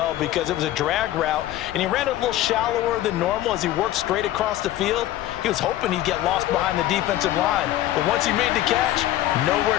because it was a drag route, and he ran it a little shallower than normal as he worked straight across the field. He was hoping he'd get lost behind the defensive line, but once he made the catch, nowhere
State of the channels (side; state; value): right; quieter; 14.0 dB